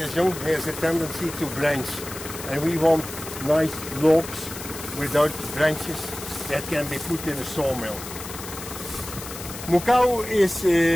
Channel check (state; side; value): noise; left; hiss, 11 dB below the sound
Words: young, has a tendency to branch, and we want nice logs without branches that can be put in a sawmill. MUKAU is